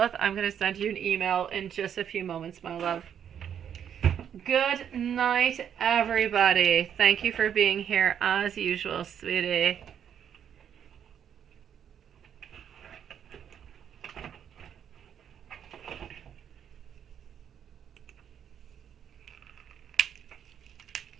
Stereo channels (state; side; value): quieter; left; 8.8 dB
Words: I'm going to send you an email in just a few moments, my love. Good night, everybody. Thank you for being here as usual, sweetie.